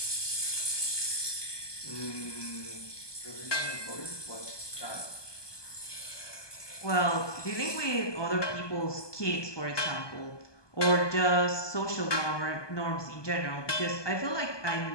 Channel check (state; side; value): late; right; 1.2 ms